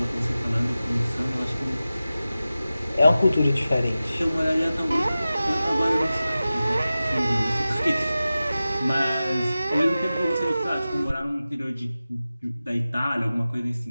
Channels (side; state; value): both; inverted; correlation -0.95